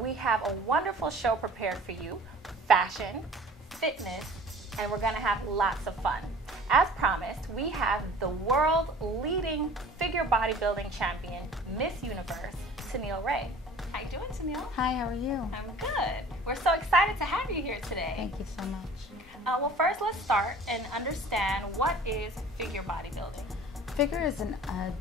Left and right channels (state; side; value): normal; both; correlation 0.46